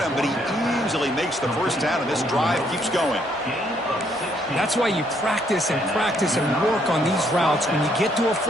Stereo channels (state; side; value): normal; both; correlation 0.70